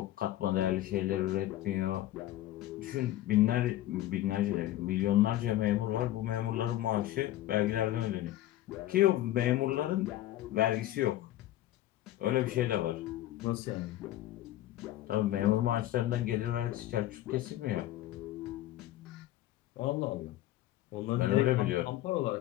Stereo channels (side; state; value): right; quieter; 14.4 dB